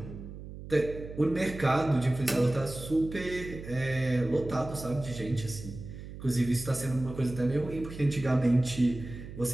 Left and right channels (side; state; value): right; noise; hum, 12 dB below the sound